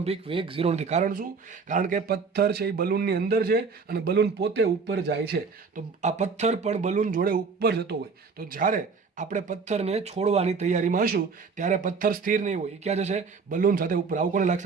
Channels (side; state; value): left; quieter; 4.9 dB